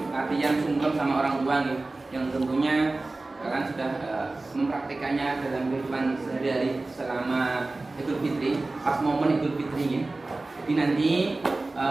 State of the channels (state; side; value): quieter; left; 3.2 dB